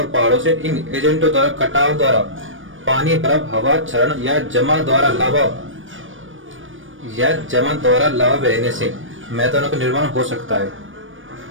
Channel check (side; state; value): left; late; 0.57 ms